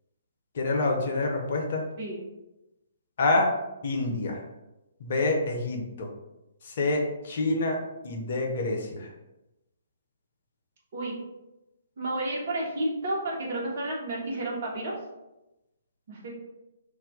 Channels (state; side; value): inverted; both; correlation -0.61